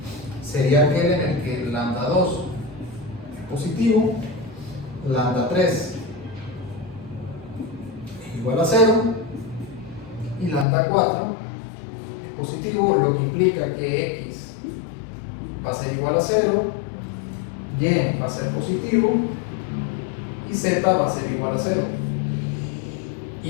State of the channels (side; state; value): right; drops out; at 10.7 s